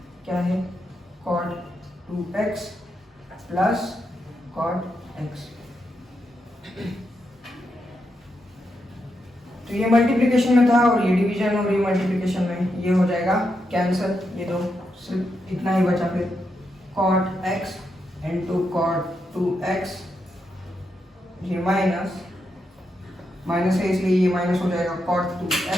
क्या है cot 2x plus cot x। तो ये मल्टीप्लिकेशन में था और ये डिवीजन और ये मल्टीप्लिकेशन में, ये हो जाएगा कैंसिल, ये दो सिर्फ इतना ही बचा। फिर cot x into cot 2x, ये माइनस माइनस है इसलिए ये माइनस हो जाएगा cot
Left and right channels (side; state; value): both; normal; correlation 0.84